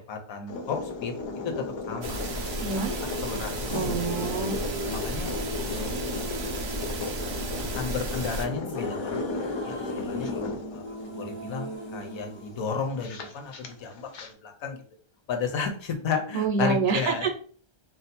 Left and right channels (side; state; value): right; late; 1.3 ms